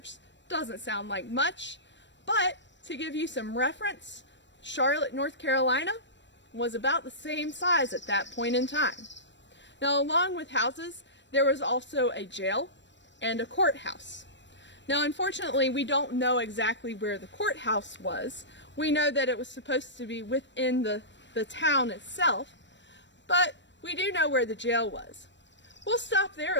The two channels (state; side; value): late; right; 0.53 ms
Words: doesn't sound like much, but to give you some reference, Charlotte, North Carolina was about the same size at that point in time. Now, along with houses, there was also a jail and a courthouse. Now, unfortunately, we don't know exactly where the courthouse was. We know that it was supposed to be within the town itself, but we do know where the jail was. We'll stop there